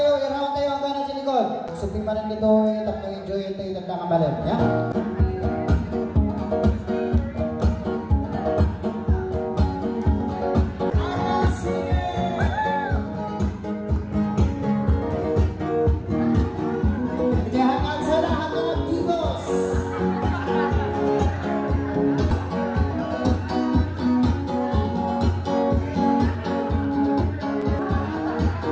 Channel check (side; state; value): both; identical; correlation 1.00